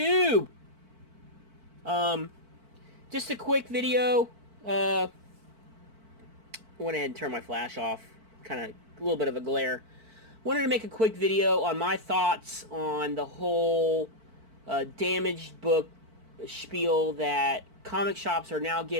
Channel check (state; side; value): late; left; 4.5 ms